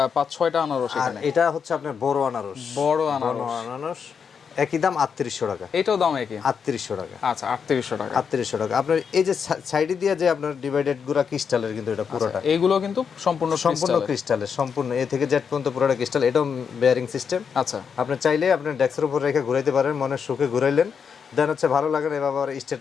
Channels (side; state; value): right; quieter; 6.6 dB